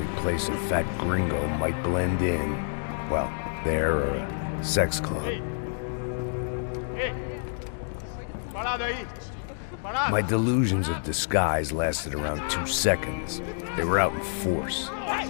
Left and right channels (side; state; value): right; silent; digital silence